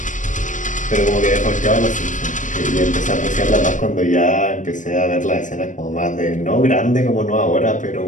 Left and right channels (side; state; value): right; late; 0.37 ms